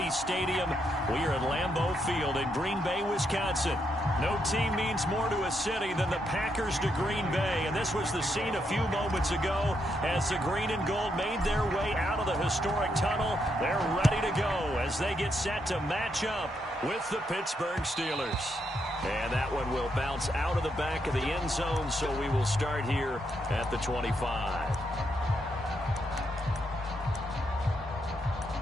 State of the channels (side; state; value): both; normal; correlation 0.79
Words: Stadium. We are at Lambeau Field in Green Bay, Wisconsin. No team means more to a city than the Packers to Green Bay, and this was the scene a few moments ago as the green and gold made their way out of the historic tunnel. They're ready to go as they get set to match up with the Pittsburgh Steelers. And that one will bounce out of the back of the end zone, so we will start here at the 25.